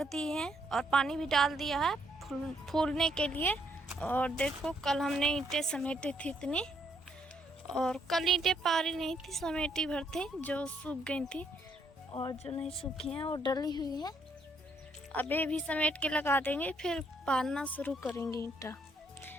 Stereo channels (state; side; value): normal; both; correlation 0.71